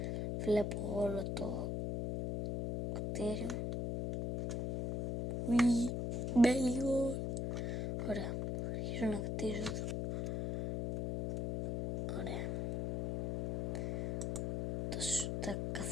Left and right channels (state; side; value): noise; left; hum, 1 dB below the sound